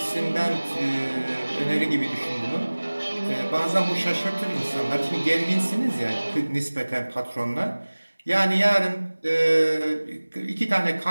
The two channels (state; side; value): inverted; both; correlation -1.00